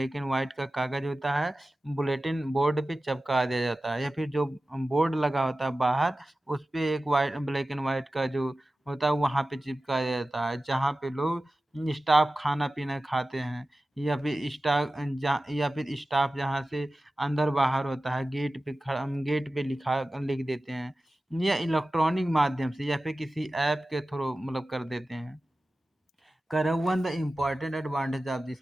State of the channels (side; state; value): both; normal; correlation 0.95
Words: एंड वाइट का कागज होता है, बुलेटिन बोर्ड पे चिपका दिया जाता है या फिर जो बोर्ड लगा होता है बाहर उस पे एक वाइट ब्लैक एंड वाइट का जो होता है वहाँ पे चिपकाया जाता है जहाँ पे लोग स्टाफ खाना पीना खाते हैं या फिर या फिर स्टाफ जहाँ से अंदर बाहर होता है गेट पे लिख देते हैं या इलेक्ट्रॉनिक माध्यम से या फिर किसी ऐप के थ्रू मतलब कर देते हैं। Karawan, the important advantage of this